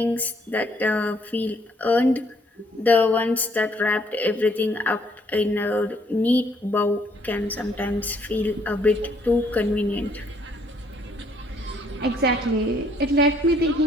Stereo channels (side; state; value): both; normal; correlation 0.66